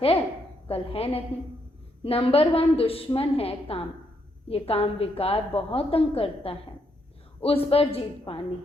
है कल है नहीं। नंबर 1 दुश्मन है काम। ये काम विकार बहुत तंग करता है, उस पर जीत पानी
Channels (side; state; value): both; normal; correlation 0.76